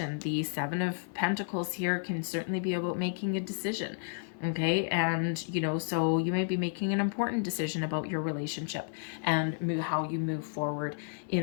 The 7 of Pentacles here can certainly be about making a decision. Okay, and so you may be making an important decision about your relationship and how you move forward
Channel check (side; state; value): right; silent; 57 dB below the other